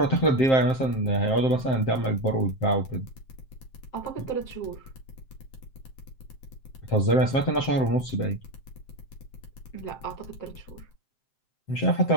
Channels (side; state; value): right; late; 7.6 ms